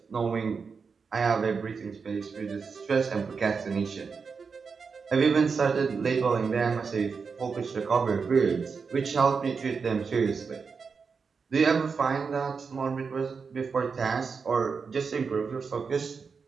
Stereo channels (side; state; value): left; quieter; 5.3 dB